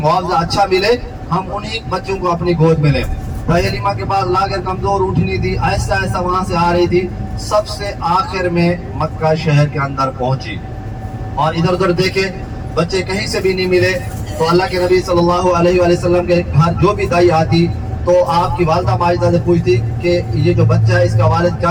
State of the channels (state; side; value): identical; both; correlation 1.00